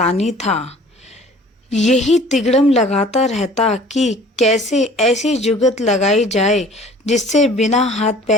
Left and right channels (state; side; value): normal; both; correlation 0.49